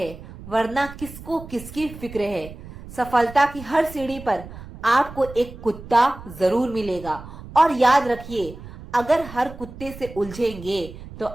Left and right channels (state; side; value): noise; right; rumble, 15 dB below the sound